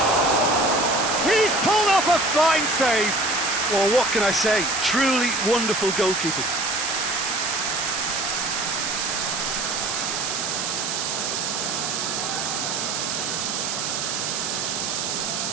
He's pulled off a fine save! Well, what can I say? Truly wonderful goalkeeping.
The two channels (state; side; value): noise; right; hiss, 2 dB below the sound